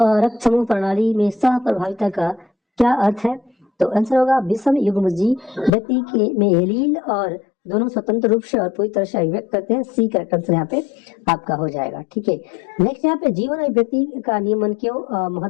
समूह प्रणाली में सह प्रभाविता का क्या अर्थ है? तो आंसर होगा विषम युग्मजी व्यक्ति के में एलील और दोनों स्वतंत्र रूप से और पूरी तरह से अभिव्यक्त करते हैं। सी करेक्ट आंसर यहाँ पे आपका हो जाएगा। ठीक है, नेक्स्ट यहाँ पे जीवन और व्यक्ति का नियमन क्यों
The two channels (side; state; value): right; drops out; at 5.7 s